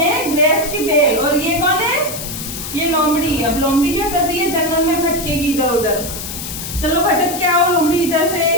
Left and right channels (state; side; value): noise; left; hiss, 8 dB below the sound